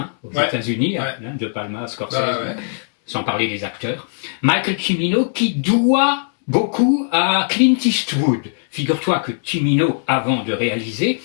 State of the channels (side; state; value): right; silent; digital silence